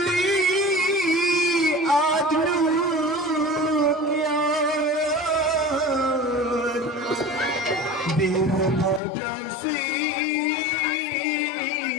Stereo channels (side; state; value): right; drops out; at 9.0 s